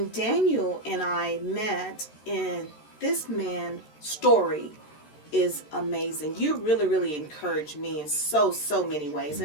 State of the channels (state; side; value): late; right; 13 ms